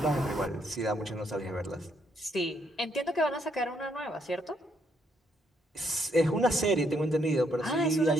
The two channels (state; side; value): normal; both; correlation 0.73